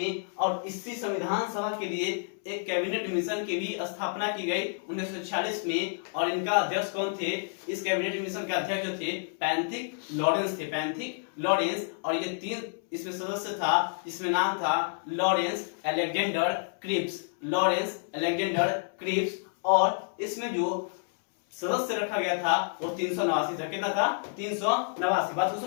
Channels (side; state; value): right; silent; 58 dB below the other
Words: और इसी संविधान सभा के लिए एक कैबिनेट मिशन की भी स्थापना की गई 1946 में। और इनका अध्यक्ष कौन थे? इस कैबिनेट मिशन के अध्यक्ष जो थे पैंथिक लॉरेंस थे, पैंथिक लॉरेंस। और ये 3 इसमें सदस्य था, जिसमें नाम था Lawrence, Alexander, Cripps, Lawrence, Alexander, Cripps. और इसमें जो सदस्य रखा गया था वो 389 था। कितना था? 389। बात को